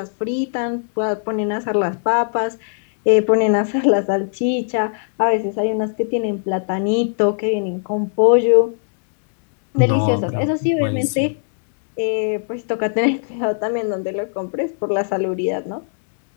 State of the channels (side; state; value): right; silent; digital silence